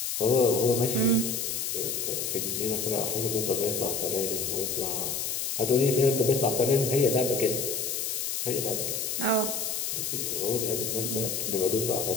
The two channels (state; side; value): noise; left; hiss, 2 dB below the sound